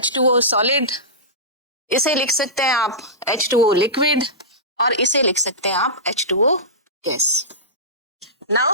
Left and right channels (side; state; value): both; normal; correlation -0.17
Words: सॉलिड, इसे लिख सकते हैं आप H2O लिक्विड, और इसे लिख सकते हैं आप H2O गैस।